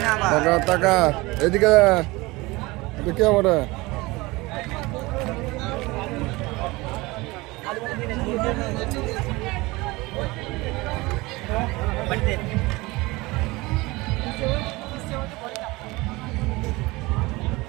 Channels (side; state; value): left; quieter; 22.2 dB